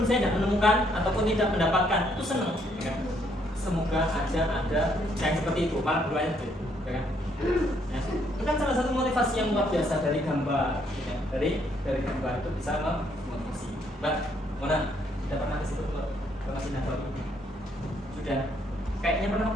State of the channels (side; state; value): both; normal; correlation 0.70